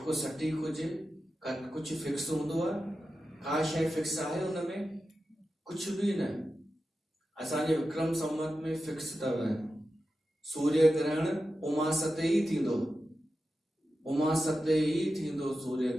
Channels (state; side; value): normal; both; correlation 0.92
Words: सटीक हुजे, कुछ फिक्स हूंदो आहे? का शइ फिक्स आहे उनमें? कुछ भी न। असांजे विक्रम संवत में फिक्स अथव, सूर्य ग्रहण उमास ते ई थींदो, उमास ते ई थींदो सूर्य